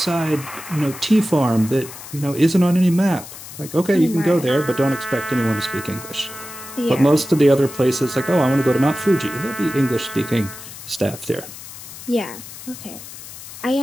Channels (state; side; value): noise; left; hiss, 14 dB below the sound